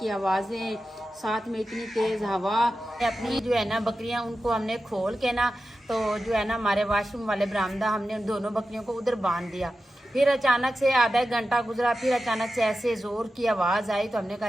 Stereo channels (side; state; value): both; normal; correlation 0.92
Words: आवाज़ें, साथ में इतनी तेज़ हवा। अपनी जो है ना बकरियां उनको हमने खोल के ना, तो जो है ना हमारे वाशरूम वाले बरामदा, हमने उन दोनों बकरियों को उधर बांध दिया। फिर अचानक से आधा एक घंटा गुजरा, फिर अचानक से ऐसे ज़ोर की आवाज़ आई, तो हमने कहा